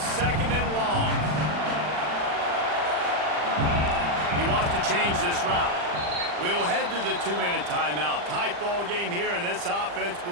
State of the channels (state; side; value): late; left; 40 ms